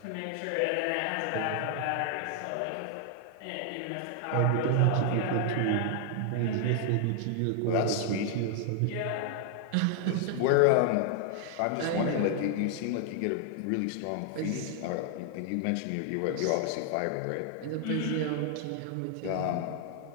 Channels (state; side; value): different; both; correlation 0.00